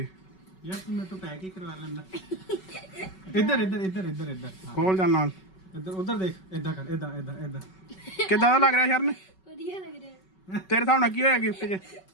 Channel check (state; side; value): late; right; 5.3 ms